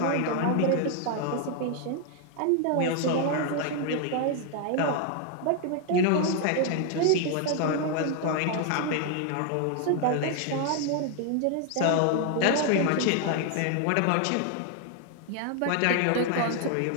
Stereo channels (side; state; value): both; different; correlation 0.00